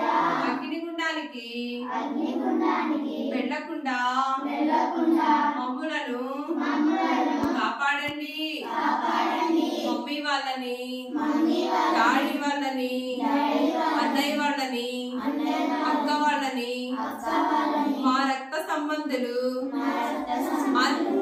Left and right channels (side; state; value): both; identical; correlation 1.00